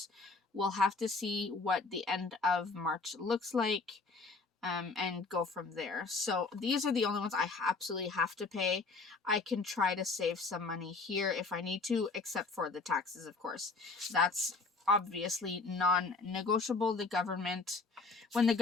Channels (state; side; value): quieter; right; 3.9 dB